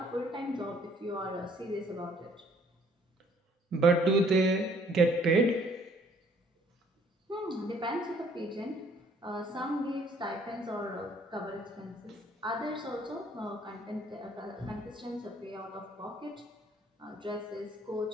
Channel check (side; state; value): both; normal; correlation 0.61